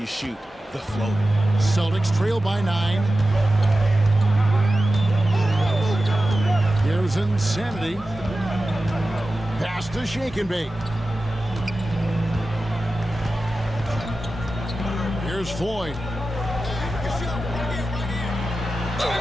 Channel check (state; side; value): normal; both; correlation 0.93